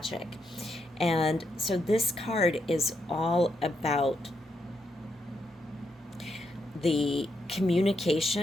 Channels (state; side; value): normal; both; correlation 0.81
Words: And so this card is all about the